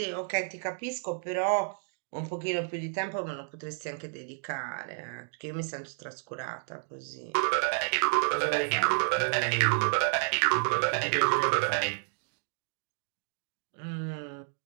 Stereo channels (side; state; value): left; silent; 57 dB below the other